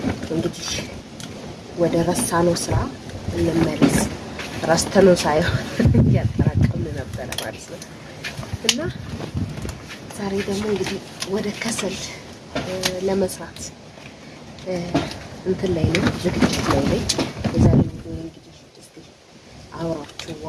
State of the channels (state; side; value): identical; both; correlation 1.00